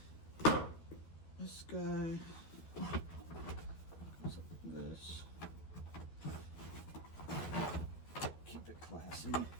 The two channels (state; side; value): late; right; 12 ms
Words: This guy goes like this. Keep it classy.